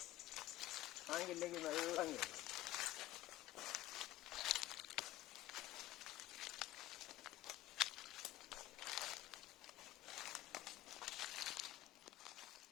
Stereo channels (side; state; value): right; quieter; 15.8 dB